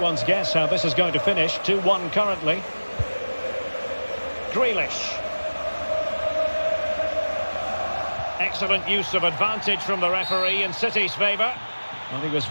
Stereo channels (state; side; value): inverted; both; correlation -1.00